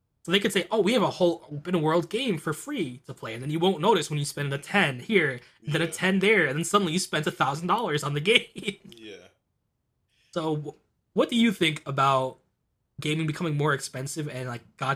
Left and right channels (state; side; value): identical; both; correlation 1.00